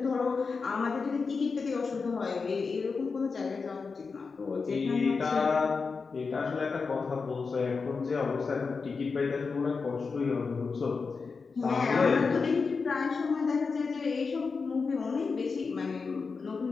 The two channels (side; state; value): right; quieter; 4.8 dB